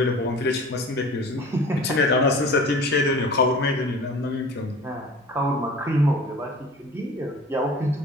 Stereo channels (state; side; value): normal; both; correlation 0.41